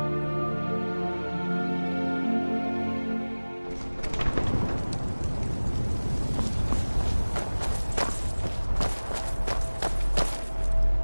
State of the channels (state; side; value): inverted; both; correlation -1.00